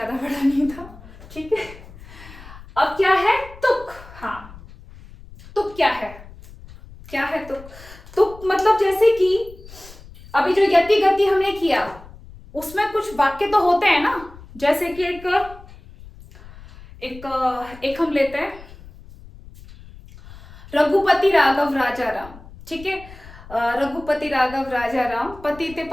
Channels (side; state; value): left; noise; rumble, 19 dB below the sound